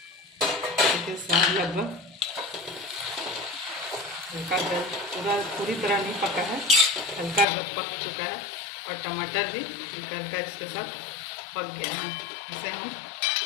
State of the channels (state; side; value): drops out; right; at 7.5 s